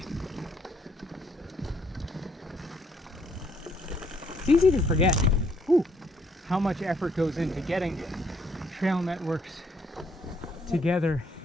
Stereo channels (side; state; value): both; normal; correlation 0.69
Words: It's easy to forget how much effort goes into getting trail networks together